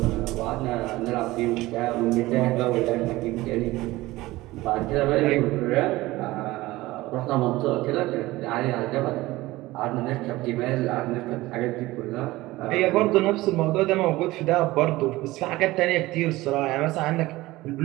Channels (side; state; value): left; quieter; 18.7 dB